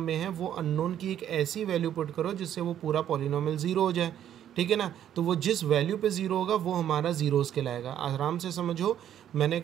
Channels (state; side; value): quieter; left; 10.5 dB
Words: है वो अननोन की एक ऐसी वैल्यू पुट करो जिससे वो पूरा पॉलिनोमियल ज़ीरो हो जाए, ठीक है ना। तो वो जिस वैल्यू पे ज़ीरो होगा वो हमारा ज़ीरोज़ कहलाएगा। आराम से समझो, मैंने